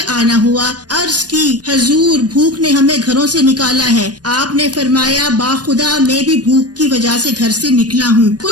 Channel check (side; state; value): left; late; 0.69 ms